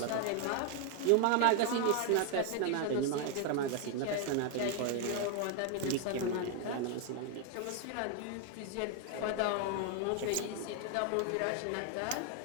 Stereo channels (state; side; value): different; both; correlation 0.00